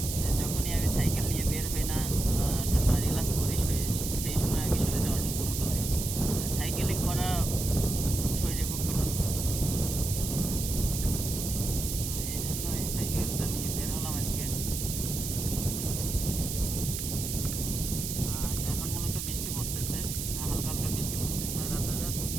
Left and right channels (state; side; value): noise; right; hiss, 4 dB below the sound